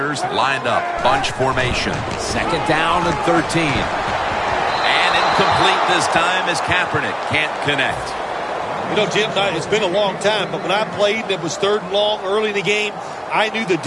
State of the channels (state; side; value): identical; both; correlation 1.00